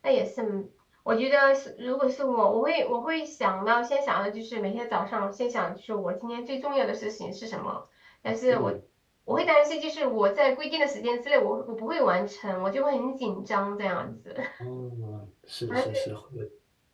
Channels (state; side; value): identical; both; correlation 1.00